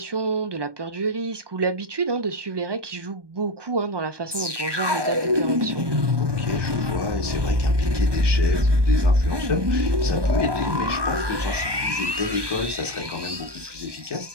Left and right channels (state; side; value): late; left; 1.2 ms